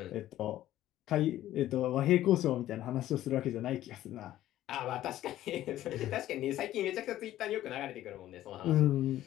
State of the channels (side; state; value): right; quieter; 13.6 dB